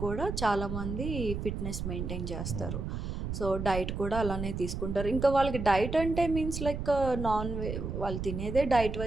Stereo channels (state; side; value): noise; right; rumble, 4 dB below the sound